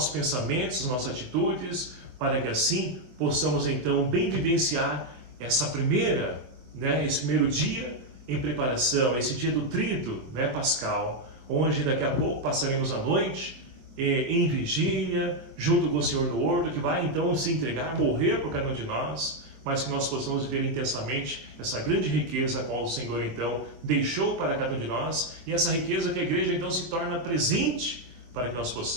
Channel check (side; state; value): left; late; 24 ms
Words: pensamentos, as nossas atitudes, para que assim possamos então bem vivenciar esse primeiro dia em preparação, esse dia do Tríduo pascal, onde daqui a pouco passaremos a noite em vigília, junto com o Senhor no horto, que vai então se entregar, morrer por cada um de nós, mas que nós possamos viver intensamente essa grande riqueza a qual o Senhor então deixou para cada um de nós, e essa riqueza que a igreja então se torna presente, para que nós